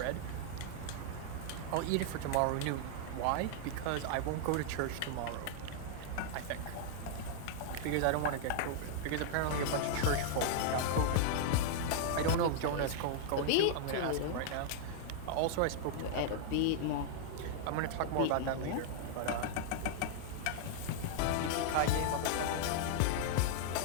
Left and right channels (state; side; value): different; both; correlation -0.01